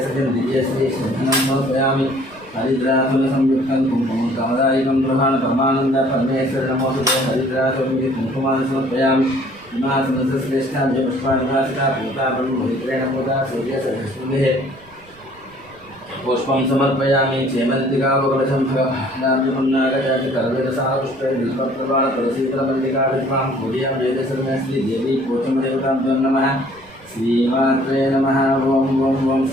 सत्यं दिव्यश्री सिद्धनं समर्पयामि हरिद्रासुरसंयुक्तं कुङ्कुमं कामदायिकं गृहाण परमानन्द परमेश्वर नमोऽस्तुते हरिद्रासुरमिति कुङ्कुमान् समर्पयामि हिमासनश्रेष्ठाभ्य पुष्पाणिभासिता पूता ब्रह्मपवित्रेण पूता सूर्यसहस्रभिः पुष्पं समर्पयामि चेमन्तिकावकलशं भगवानार्जुननागजातिकरवेदसारपुष्पै बिल्वप्रवाळतुलसीफलमल्लिकाभिष्पां पूजयां वेदसर्वस्त्री देवी पोचमदेवताभ्यो नमः श्रीमात्रे नमः ॐ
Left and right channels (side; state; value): right; noise; rumble, 28 dB below the sound